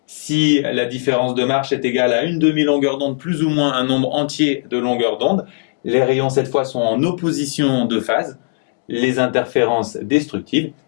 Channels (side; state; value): right; silent; digital silence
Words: Si la différence de marche est égale à une demi-longueur d'onde plus ou moins un nombre entier de longueurs d'onde, les rayons cette fois sont en opposition de phase, les interférences destructives